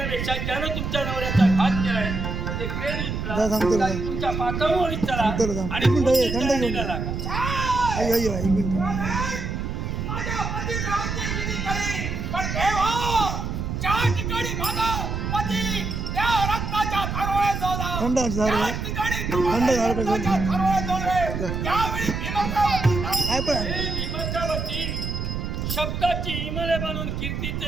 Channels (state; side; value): noise; right; rumble, 3 dB below the sound